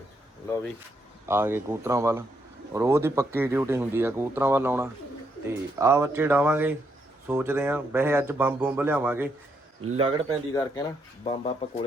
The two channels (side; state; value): both; normal; correlation 0.77